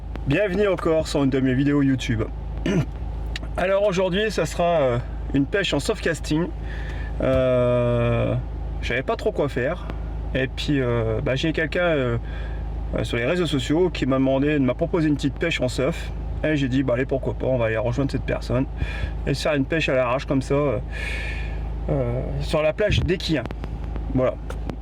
bienvenue encore sur une de mes vidéos YouTube. Alors aujourd'hui ça sera une pêche en soft casting. J'avais pas trop quoi faire et puis j'ai quelqu'un sur les réseaux sociaux qui m'a proposé une petite pêche en surf et j'ai dit allez, pourquoi pas, on va aller rejoindre cette personne et se faire une pêche à l'arrache comme ça sur la plage d'Equien. Voilà,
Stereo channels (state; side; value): identical; both; correlation 1.00